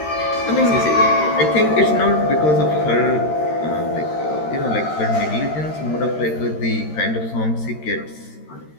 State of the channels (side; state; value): right; late; 13 ms